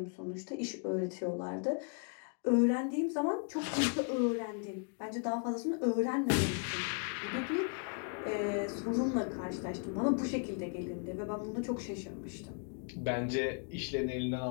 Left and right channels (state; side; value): quieter; right; 40.0 dB